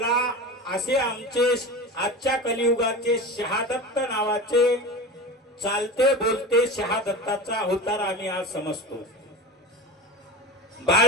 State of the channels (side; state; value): both; normal; correlation 0.29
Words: असे आमचे आजच्या कलियुगाचे शहादत्त नावाचे चालते बोलते शहादत्ताचा अवतार आम्ही आज समजतो।